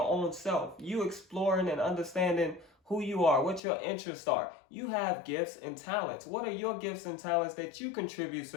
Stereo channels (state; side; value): drops out; right; at 3.6 s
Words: own self? You exploring and understanding who you are, what your interests are. You have gifts and talents. What are your gifts and talents that you contribute